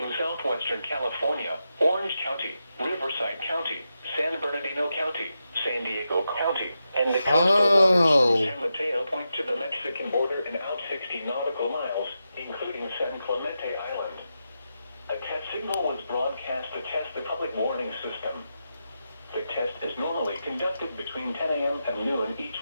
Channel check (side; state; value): both; inverted; correlation -0.88